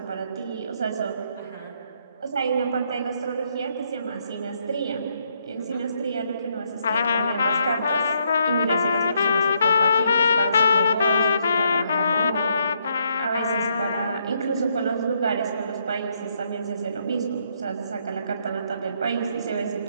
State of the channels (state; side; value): inverted; both; correlation -0.74